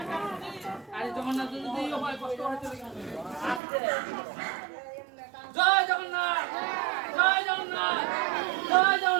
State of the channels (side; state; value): left; drops out; at 3.6 s